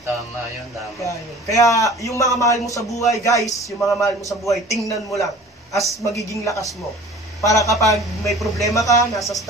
Tama yun, tama. Kaya yung mga mahal mo sa buhay, guys, yung mga mahal mo sa buhay, tingnan mo lang as magiging lakas mo. Para kapag may problema ka, nasa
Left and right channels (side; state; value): both; normal; correlation 0.45